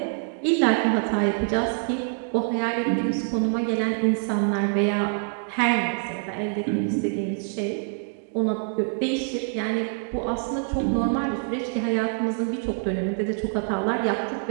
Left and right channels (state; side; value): silent; left; 61 dB below the other